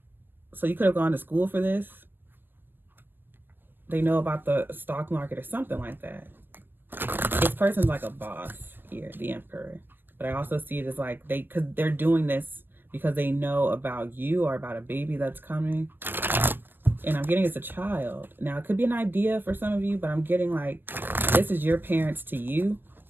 So you could have gone to school for this. They know about the stock market or something like that. This person's like a boss here, the Emperor. But I also see it as like because they're doing this because they know about you or about a baby that's coming. And I'm getting it's a child. Now, it could be an idea for some of you, but I'm getting like this is your parents to you,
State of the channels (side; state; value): left; late; 0.095 ms